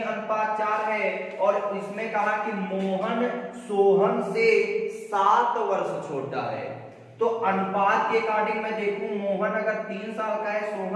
है और इसमें कहा कि मोहन सोहन से 7 वर्ष छोटा है। तो अनुपात के अकॉर्डिंग मैं देखूं, मोहन अगर 3 साल का है,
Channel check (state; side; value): identical; both; correlation 1.00